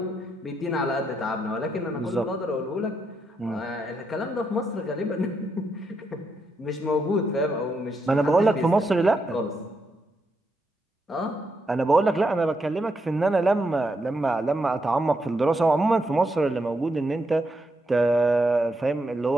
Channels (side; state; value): both; normal; correlation 0.81